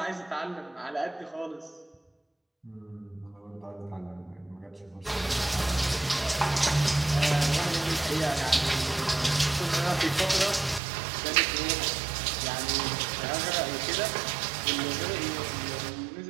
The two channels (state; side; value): drops out; left; at 10.8 s